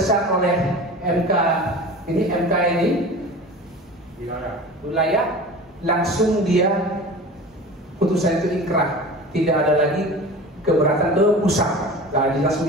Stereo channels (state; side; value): normal; both; correlation 0.36